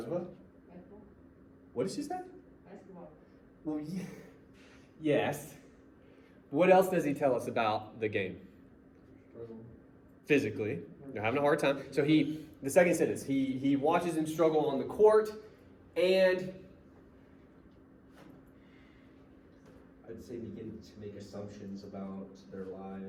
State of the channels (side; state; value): both; identical; correlation 1.00